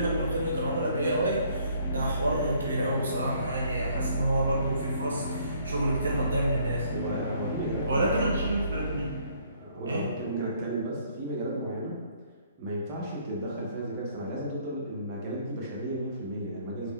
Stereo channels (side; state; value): both; inverted; correlation -0.64